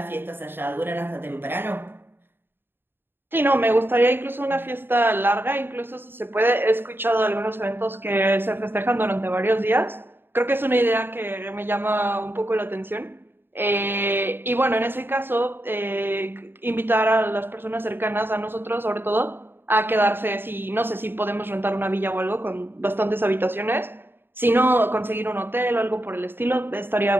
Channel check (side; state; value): left; late; 0.10 ms